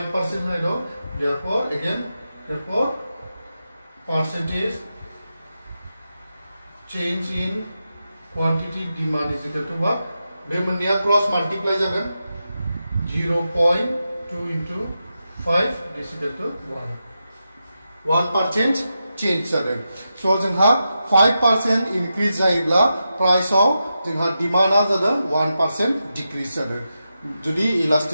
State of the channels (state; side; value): inverted; both; correlation -0.89